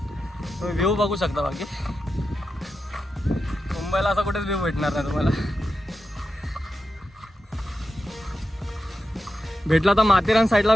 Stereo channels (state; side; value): normal; both; correlation 0.89